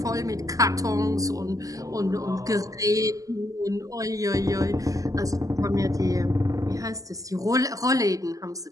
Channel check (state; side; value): late; left; 0.17 ms